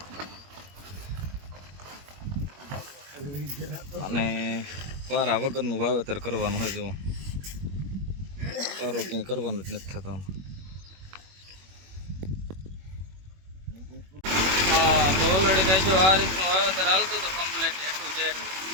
અને પારા વગરનું વાવેતર કરવાનું હોય. જો પારો ક્યાંય કરવાનું જ નથી થતો. તો ઓલરેડી કઈ જો આ રીતનું વાવેતર હાલતું હતું કમ્પ્લીટ એટલું જે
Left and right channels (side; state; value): left; late; 21 ms